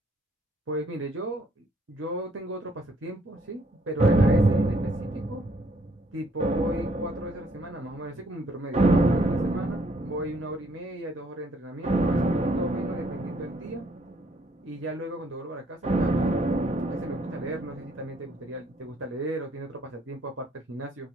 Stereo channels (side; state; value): both; normal; correlation 0.67